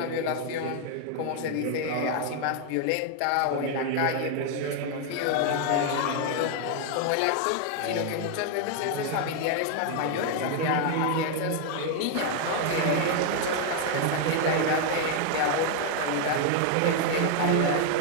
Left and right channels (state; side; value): different; both; correlation 0.00